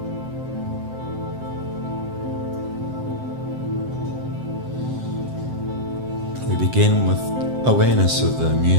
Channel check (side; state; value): left; late; 7.8 ms